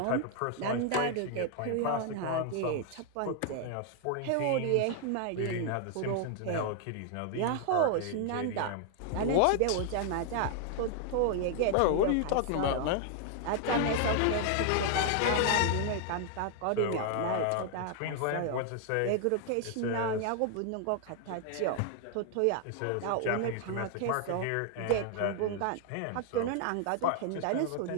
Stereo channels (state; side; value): different; both; correlation 0.00